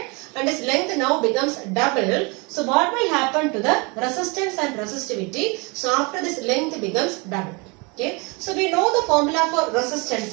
and its length now becomes double. So what will happen to the resistance and resistivity? So after this length becomes double. Okay. So we know the formula for resistance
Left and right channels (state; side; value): quieter; left; 28.9 dB